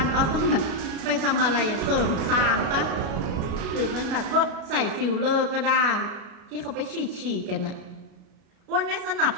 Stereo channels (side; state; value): left; late; 33 ms